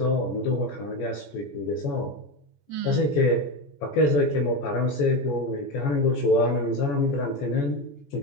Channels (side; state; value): right; late; 14 ms